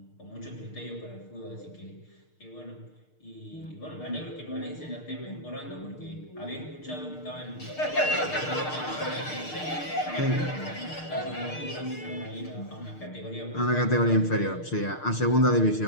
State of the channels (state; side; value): late; right; 6.6 ms